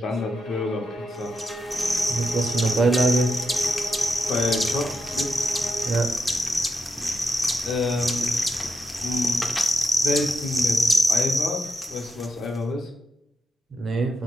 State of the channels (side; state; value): both; normal; correlation 0.85